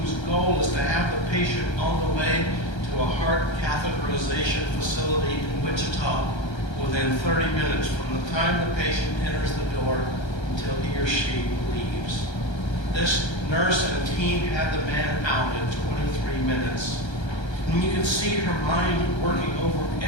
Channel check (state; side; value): late; right; 1.3 ms